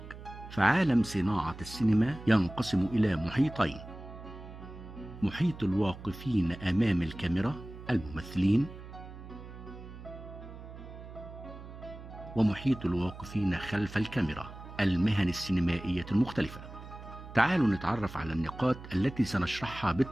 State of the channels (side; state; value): right; noise; hum, 14 dB below the sound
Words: فعالم صناعة السينما ينقسم إلى محيطين: محيط الواقفين أمام الكاميرا الممثلين، ومحيط الواقفين خلف الكاميرا المهن السينمائية المختلفة. تعالوا نتعرف على النقاط التي سنشرحها